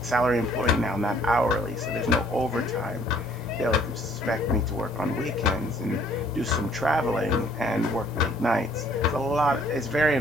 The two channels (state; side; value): normal; both; correlation 0.60